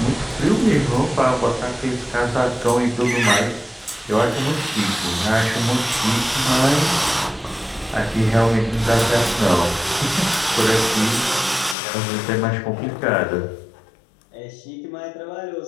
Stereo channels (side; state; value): right; drops out; at 11.8 s